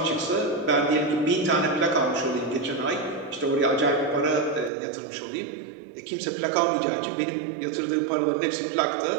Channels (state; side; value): drops out; left; at 4.7 s